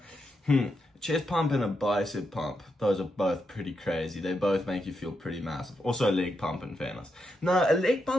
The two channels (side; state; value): both; normal; correlation 0.83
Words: chest pump and a bicep pump, those are both pretty crazy. They both make you feel pretty massive. Also a leg pump, in fairness. No, a leg